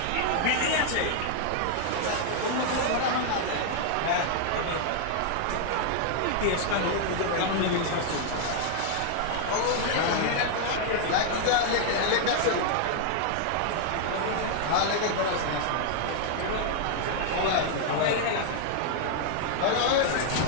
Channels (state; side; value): different; both; correlation 0.00